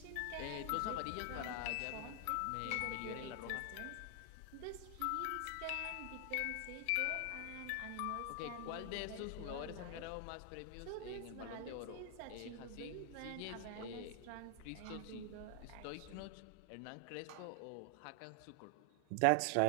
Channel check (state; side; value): different; both; correlation 0.00